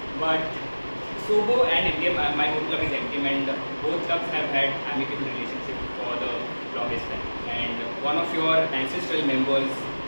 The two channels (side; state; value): both; inverted; correlation -1.00